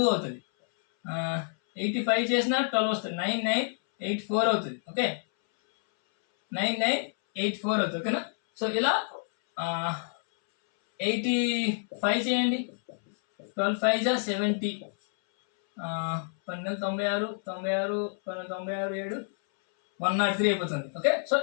అవుతుంది. 85 చేసినా 12 వస్తుంది, 9984 అవుతుంది. ఓకే 9984 అవుతుంది. ఓకేనా సో ఇలా 85 చేయండి, 12 5 జా 70, 12 96 96 7 103 అయిపోతుంది. ఓకే సో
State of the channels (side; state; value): right; silent; 59 dB below the other